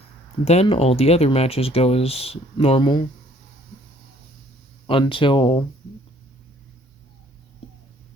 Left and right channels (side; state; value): both; normal; correlation 0.60